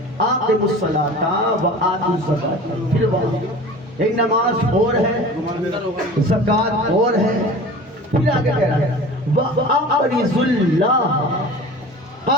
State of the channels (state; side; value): normal; both; correlation 0.39